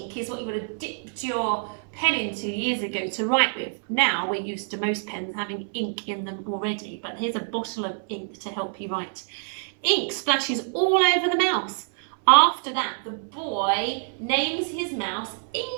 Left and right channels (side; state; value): left; silent; 59 dB below the other